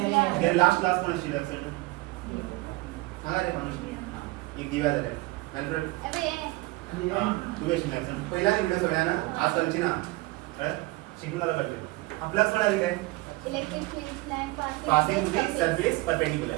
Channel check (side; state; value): left; quieter; 22.0 dB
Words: लास्ट क्लास कोण शिकलाय ऍक्शन सांगा रे माणूस एक दिवा झालाय मॅल्फ्रेड तू वेश नाही ऍक्शन पहिला व्हिडिओ सगळ्यांना आज चालची ना शिकून आला पाहिजे आपला सोडा काय electric field line passing to the surface perpendicular